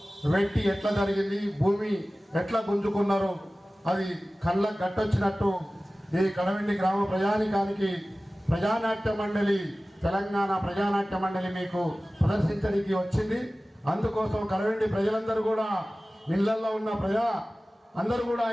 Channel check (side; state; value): both; normal; correlation 0.97